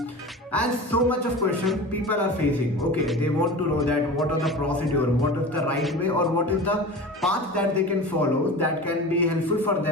And so much of questions people are facing. Okay, they want to know that what are the procedure, what is the right way or what is the path that they can follow that can be helpful for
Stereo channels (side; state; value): both; normal; correlation 0.33